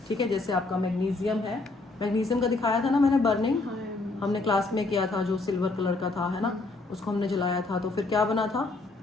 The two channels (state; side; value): quieter; right; 3.4 dB